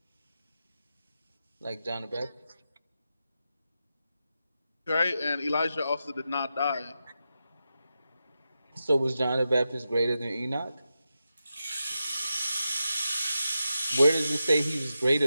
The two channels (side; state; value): both; inverted; correlation -0.89